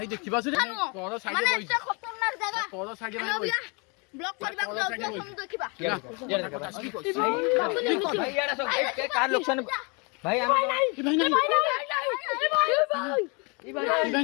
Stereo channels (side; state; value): right; quieter; 31.8 dB